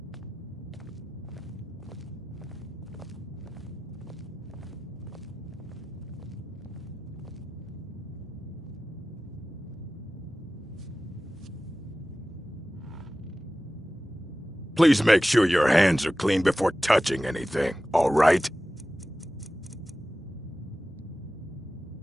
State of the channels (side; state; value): both; normal; correlation 0.95